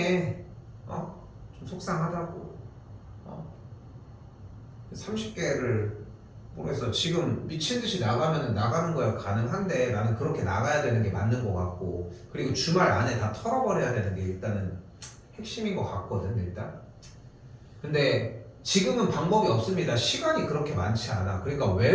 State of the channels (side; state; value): both; identical; correlation 1.00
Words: 좀 속상하다고. 30개를 모르겠어. 지금 미친 듯이 나가면은 나가는 거야 가능한데 나는 그렇게 나가야 되는 게 맞는 것 같고 그리고 주말 안에 다 털어버려야 되는 게 일단은 핵심인 것 같거든 일단. 근데 지금은 방법이 없습니다. 시간이 그렇게 많지 않아. 그러니까